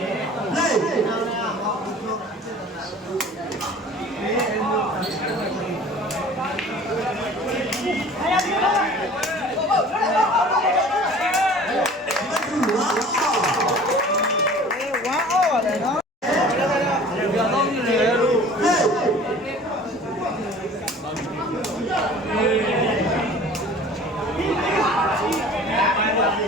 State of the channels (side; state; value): both; normal; correlation 0.46